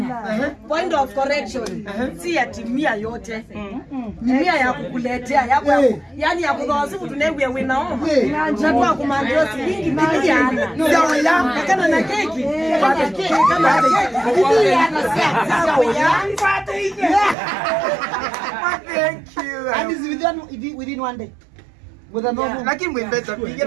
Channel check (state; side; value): drops out; left; at 17.4 s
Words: Point of correction. Si ya timia yote. Mia ya kukuletea yako. Yaani ya kudhawasifu tunewe winaoma. Na kwa kumandio silingi biliana. Sawa ya kana na keki. Pata keki kama keki. Biliana sawa ya. Pata hiki. Thank you. And is within one day. With a normal. Lakini mwembeza